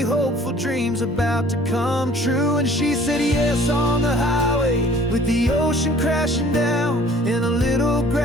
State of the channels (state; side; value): normal; both; correlation 0.52